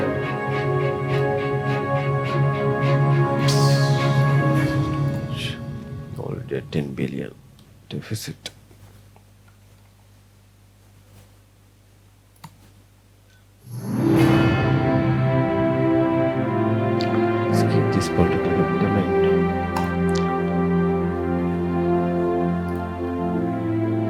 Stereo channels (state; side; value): identical; both; correlation 1.00